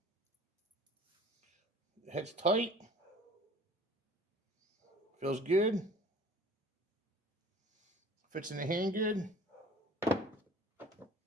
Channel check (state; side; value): normal; both; correlation 0.47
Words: The head's tight. Feels good. Fits in the hand good.